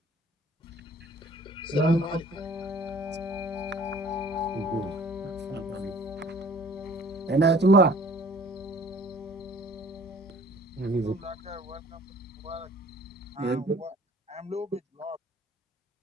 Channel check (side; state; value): both; normal; correlation 0.52